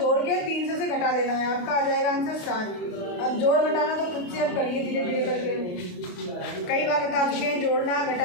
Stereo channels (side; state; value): right; late; 28 ms